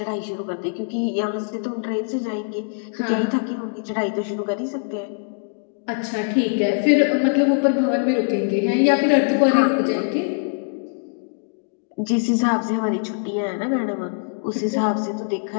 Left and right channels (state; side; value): silent; right; digital silence